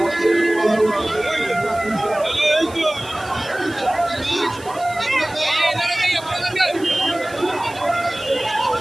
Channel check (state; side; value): noise; right; hiss, 20 dB below the sound